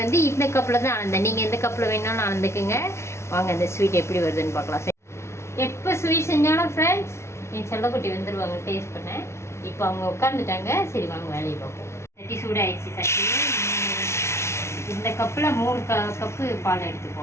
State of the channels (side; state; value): right; late; 0.13 ms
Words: வந்து இந்த கப்பில் தான் அளந்தேன். நீங்கள் எந்த கப்பில் வேணாலும் அளந்துக்குங்க. வாங்க இந்த ஸ்வீட் எப்படி வருதுன்னு பார்க்கலாம். எப்போ ஸ்வீட் செஞ்சாலும் ஃப்ரெண்ட்ஸ் என் செல்லக்குட்டி வந்துடுவாங்க டேஸ்ட் பண்ண. இப்போ அவங்க உட்காந்துட்டாங்க. சரி வாங்க வேலையை பார்ப்போம். சட்டி சூடாகிடுச்சு. சட்டி இந்த கப்பில் 3 கப்பு பால்